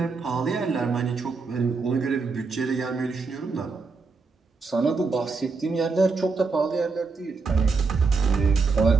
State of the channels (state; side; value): quieter; left; 4.4 dB